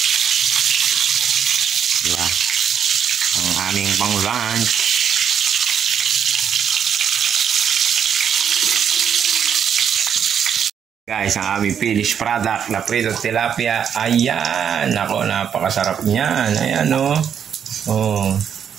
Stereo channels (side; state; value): left; quieter; 8.1 dB